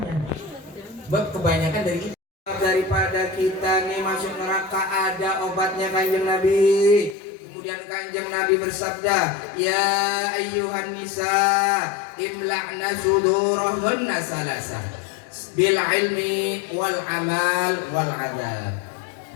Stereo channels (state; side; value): drops out; right; at 7.2 s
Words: Sebab kebanyakan dari itu. Daripada kita nih masuk neraka ada obatnya Kanjeng Nabi. Kemudian Kanjeng Nabi bersabda, ya ayyuhan nisa imla'na sudurahunna salasa bil ilmi wal amal wal adab.